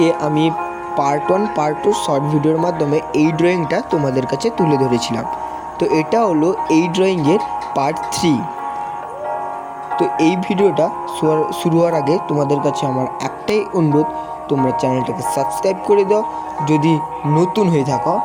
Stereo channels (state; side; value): identical; both; correlation 1.00